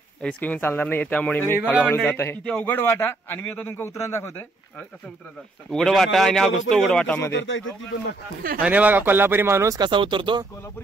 रिस्क घेऊन चालणार नाही त्यामुळे मी हळूहळू जात आहे. इथे अवघड वाटा आणि मी आता तुमका उतरण दाखवतोय. कसं उतरायचं? उघड वाटा आणि हा घुसतो उघड वाटामध्ये. आणि बघा कोल्हापुरी माणूस कसा उतरतो.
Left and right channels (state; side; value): quieter; left; 3.1 dB